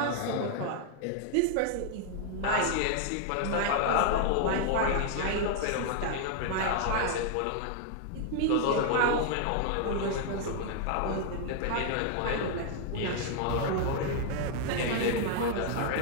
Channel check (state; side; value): different; both; correlation 0.00